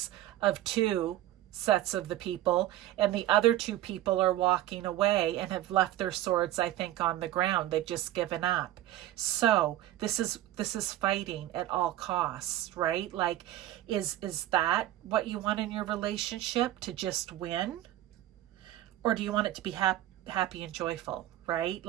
of 2 sets of the people, and the other 2 people are walking away and have left their swords, I think, on the ground. They've just given up. So this is fighting at all costs, right? Like, is that what you want in your relationship, to just win? Or do you want it to be happy and joyful, right?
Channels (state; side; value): quieter; left; 14.1 dB